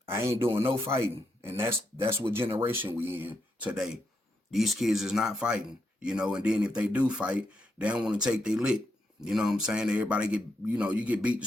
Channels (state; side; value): normal; both; correlation 0.81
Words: I ain't doing no fighting. And that's what generation we in today. These kids is not fighting. You know, and then if they do fight, they don't want to take their lick. You know what I'm saying? Everybody get, you know, you get beat to